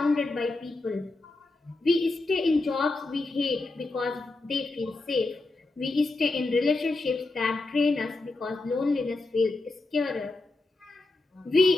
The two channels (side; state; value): right; quieter; 3.1 dB